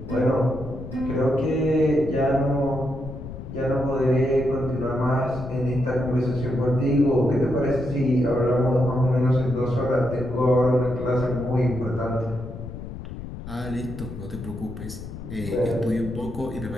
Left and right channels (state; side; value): noise; left; rumble, 10 dB below the sound